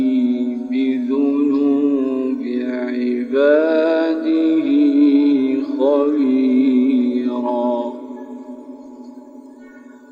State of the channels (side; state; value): both; identical; correlation 1.00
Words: بذنوب عباده خبيرا.